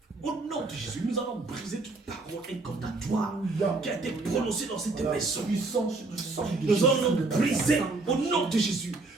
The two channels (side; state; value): left; quieter; 3.4 dB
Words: Au nom de Jésus, nous allons briser toute parole incantatoire qui a été prononcée dans cette maison. Nous allons briser au nom de Jésus